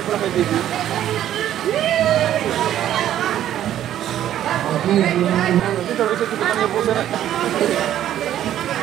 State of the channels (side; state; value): left; quieter; 11.6 dB